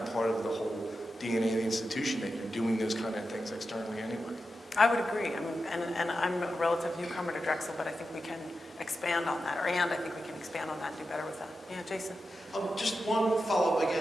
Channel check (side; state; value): both; normal; correlation 0.90